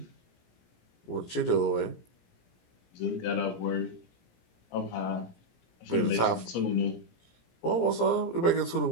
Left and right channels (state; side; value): late; right; 17 ms